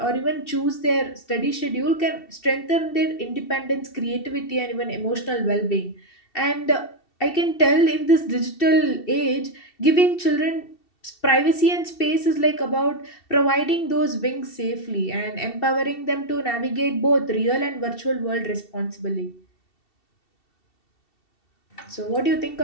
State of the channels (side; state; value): right; late; 2.7 ms